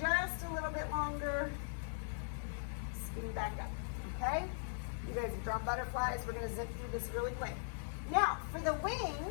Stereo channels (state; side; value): silent; right; digital silence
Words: just a little bit longer, skinny back up. Okay? You guys have drawn butterflies. We're going to zip through this really quick. Now, for the